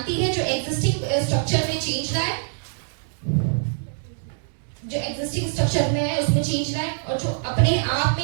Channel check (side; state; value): left; silent; digital silence